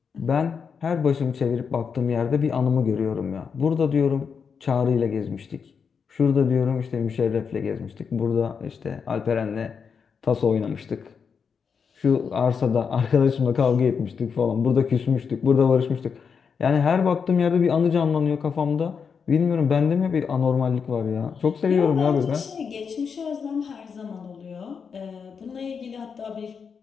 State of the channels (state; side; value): quieter; right; 6.2 dB